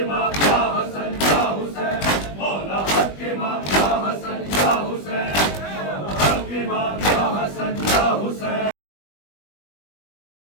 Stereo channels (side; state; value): right; late; 20 ms